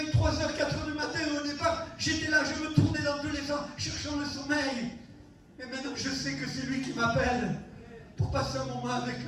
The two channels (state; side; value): identical; both; correlation 1.00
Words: 3h, 4h du matin et au départ, j'étais là, je me tournais dans tous les sens, cherchant le sommeil. Et maintenant, je sais que c'est lui qui m'appelle pour passer un moment avec